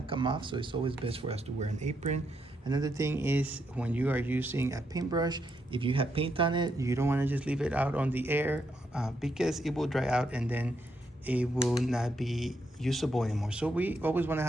come off, so it's always best for us to wear an apron. Another thing is when you are using a paintbrush, if you have paint on it, you don't want to just leave it out on the air because it will dry out and then it will not be usable anymore. So we always want to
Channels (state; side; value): normal; both; correlation 0.79